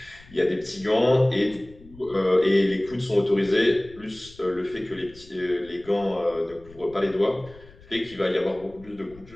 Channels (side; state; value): left; noise; rumble, 23 dB below the sound